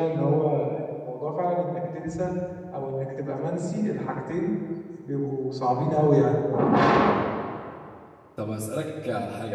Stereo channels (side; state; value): both; identical; correlation 1.00